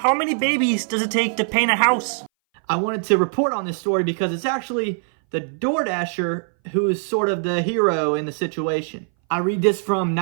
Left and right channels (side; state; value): left; silent; 61 dB below the other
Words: many babies does it take to paint a house? I wanted to report on this story because it's actually the DoorDasher who is sort of the hero in the situation. I read this from